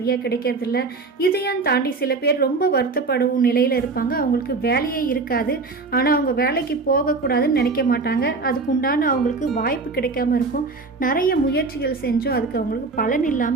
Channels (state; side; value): quieter; left; 4.0 dB